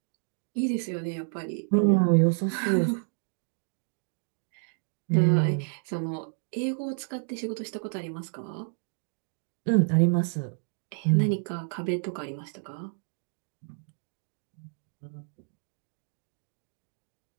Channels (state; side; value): silent; left; 58 dB below the other